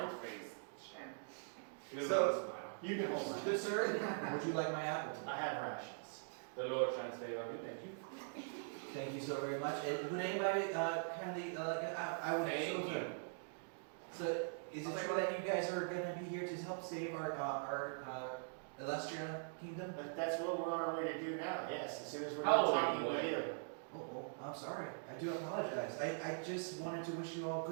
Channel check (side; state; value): left; silent; digital silence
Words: face. Shame. He doesn't So- want to smile. You can hold mine. Good sir, would you like my apple today? I have rations. The Lord transfer you. Thank you. Thank you so very much, and would anybody kindly, I would Thank so you. good. So, is it true that you guys are gonna be here to help save our Illustrian kingdom? That's what we're on our way to do now, yes, as soon as we're How done old are talking you, with boy? you. Oh, I'm sorry, I do apologize, I just wanted to wish you all